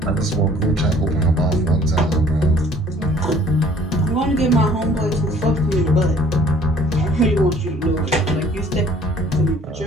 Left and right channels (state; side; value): normal; both; correlation 0.56